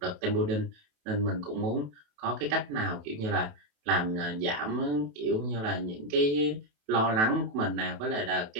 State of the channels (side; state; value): left; late; 28 ms